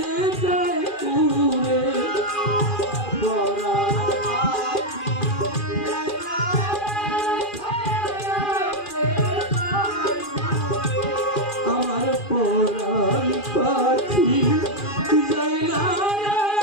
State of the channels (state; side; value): late; right; 2.4 ms